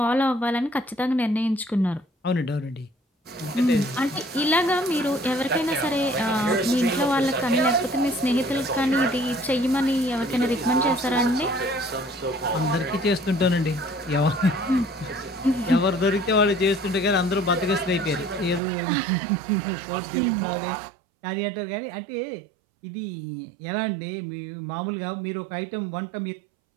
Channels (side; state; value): left; drops out; at 18.6 s